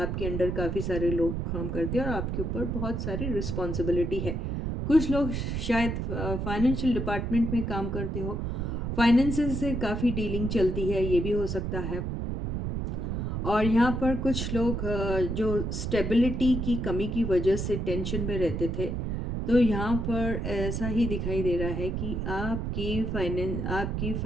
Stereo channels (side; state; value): right; noise; rumble, 2 dB below the sound